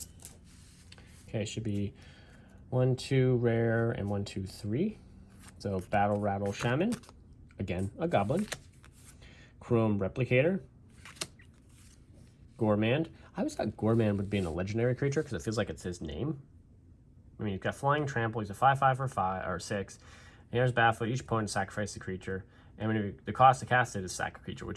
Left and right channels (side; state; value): both; identical; correlation 1.00